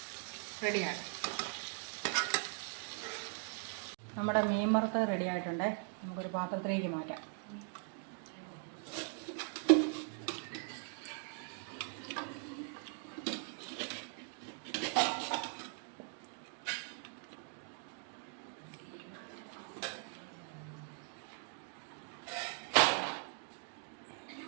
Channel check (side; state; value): left; silent; 51 dB below the other